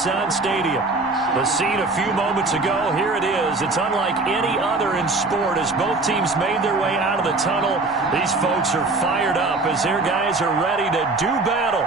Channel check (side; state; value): left; quieter; 3.4 dB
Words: Stadium. The scene a few moments ago, here it is. It's unlike any other in sport as both teams made their way out of the tunnel. These folks are fired up as their guys are ready to do